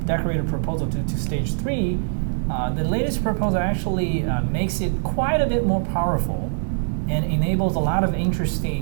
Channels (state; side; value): silent; left; digital silence